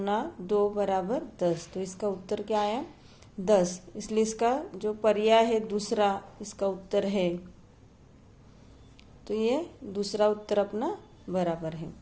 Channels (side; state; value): both; identical; correlation 1.00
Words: 2 बराबर 10। तो इसका उत्तर क्या आया 10। इसलिए इसका जो पर्याय है दूसरा इसका उत्तर है। तो ये दूसरा उत्तर अपना बराबर है।